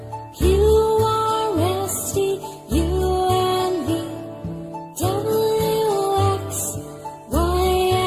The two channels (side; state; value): both; identical; correlation 1.00